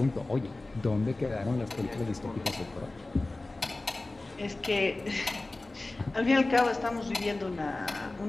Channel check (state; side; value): quieter; right; 3.0 dB